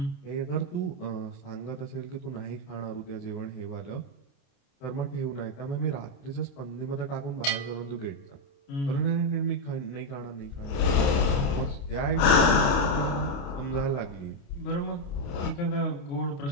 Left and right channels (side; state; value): right; late; 29 ms